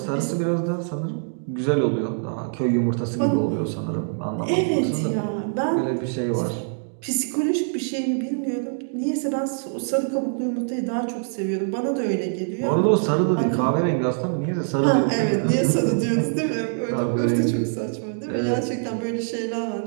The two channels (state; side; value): silent; left; digital silence